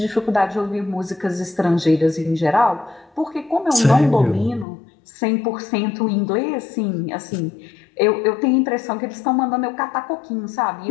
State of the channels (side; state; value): right; drops out; at 4.7 s